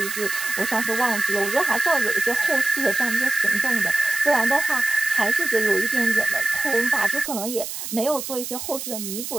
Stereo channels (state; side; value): noise; right; hiss, 7 dB below the sound